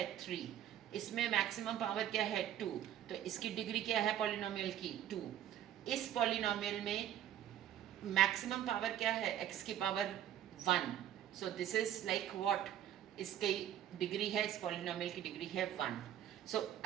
3. इसमें मैक्सिमम पावर क्या है 2, तो इसकी डिग्री क्या है पॉलिनोमियल की 2. इस पॉलिनोमियल में मैक्सिमम पावर क्या है, x की power 1. So this is like what, इसकी डिग्री है, इस पॉलिनोमियल की डिग्री है 1. सो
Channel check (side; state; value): left; quieter; 11.2 dB